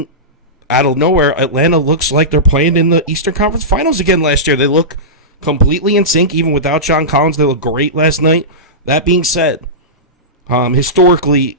out of nowhere, Atlanta looks like they're playing in the Eastern Conference Finals again last year. They look completely in sync, even without John Collins. They look great last night. That being said, historically,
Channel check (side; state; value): both; normal; correlation -0.17